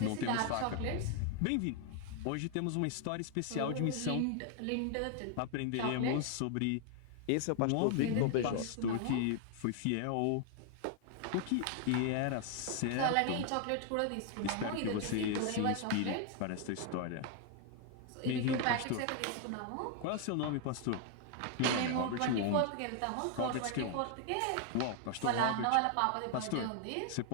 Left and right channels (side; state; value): both; different; correlation 0.00